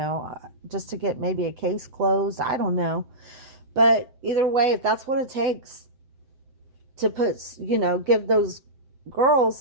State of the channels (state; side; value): late; left; 7.8 ms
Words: just to get maybe a case closed. I don't know. But either way, if that's what it takes to put, give those girls